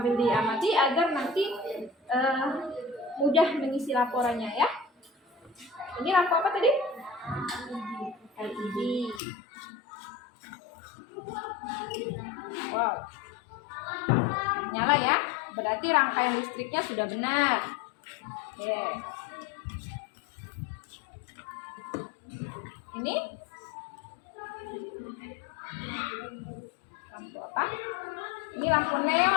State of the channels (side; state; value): right; drops out; at 9.2 s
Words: diamati agar nanti mudah mengisi laporannya ya. Ini lampu apa tadi? LED. Wow, nyala ya, berarti rangkaian listriknya sudah benar. Oke. Ini lampu apa? Ini lampu